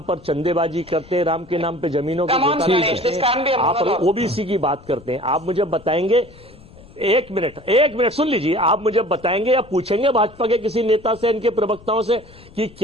पर चंदेबाजी करते हैं, राम के नाम पे जमीनों को आप ओबीसी की बात करते हैं। आप मुझे बताएंगे, एक मिनट सुन लीजिए, आप मुझे बताएंगे या पूछेंगे भाजपा के किसी नेता से, इनके प्रवक्ताओं से, कि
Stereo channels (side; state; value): left; noise; rumble, 23 dB below the sound